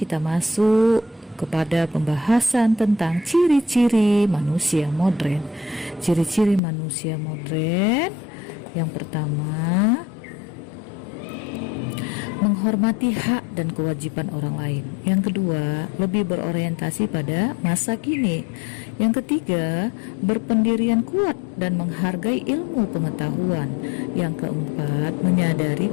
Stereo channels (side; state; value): right; drops out; at 6.6 s